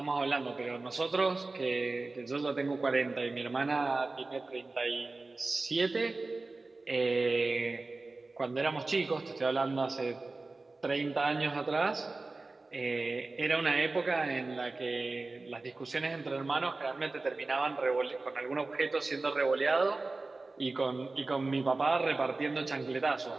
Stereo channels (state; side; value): quieter; left; 3.4 dB